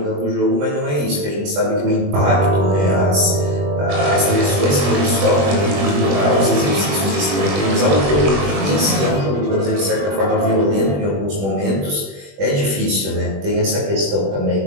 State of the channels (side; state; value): left; late; 21 ms